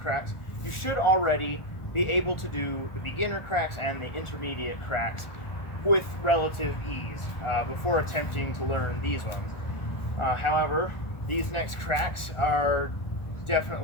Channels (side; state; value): right; late; 1.4 ms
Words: you should already be able to do the beginner cracks and the intermediate cracks with relative ease before attempting to learn these ones. However, these next cracks are